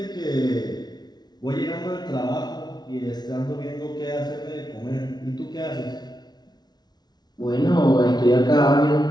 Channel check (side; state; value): right; late; 0.20 ms